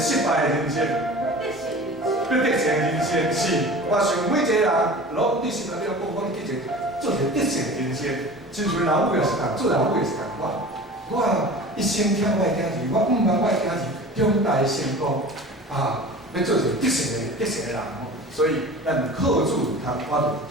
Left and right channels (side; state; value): both; normal; correlation 0.38